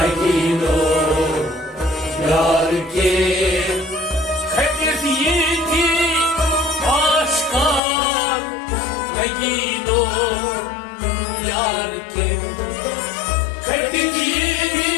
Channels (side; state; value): right; drops out; at 7.8 s